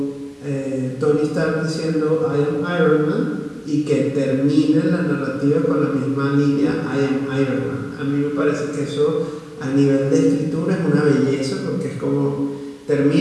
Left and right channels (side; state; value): both; identical; correlation 1.00